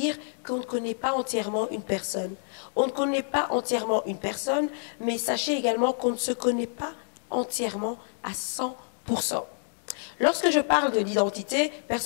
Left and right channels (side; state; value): right; silent; 59 dB below the other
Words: qu'on ne connaît pas entièrement une personne. On ne connaît pas entièrement une personne, mais sachez également qu'on ne se connaît pas entièrement à 100%. Lorsque je parle de l'identité,